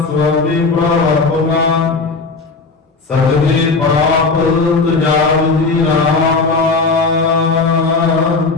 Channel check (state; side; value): quieter; right; 4.1 dB